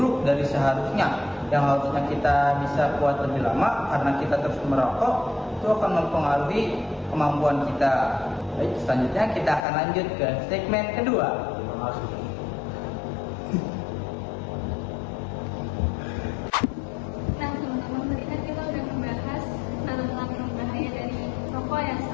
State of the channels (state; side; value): drops out; right; at 9.6 s